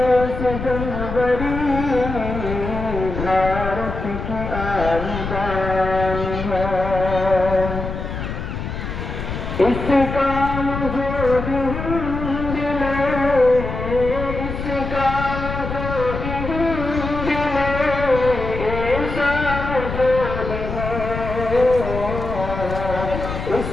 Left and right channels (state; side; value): noise; left; rumble, 6 dB below the sound